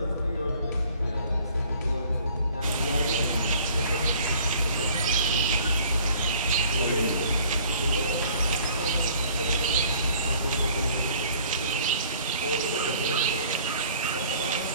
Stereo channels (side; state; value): both; inverted; correlation -0.54